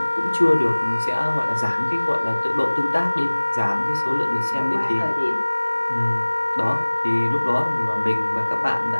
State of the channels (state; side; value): inverted; both; correlation -1.00